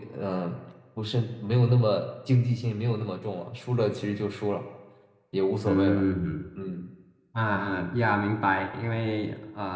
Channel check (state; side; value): identical; both; correlation 1.00